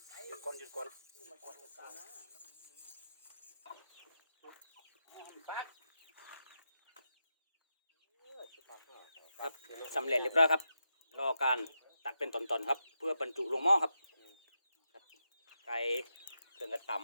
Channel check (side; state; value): both; inverted; correlation -0.87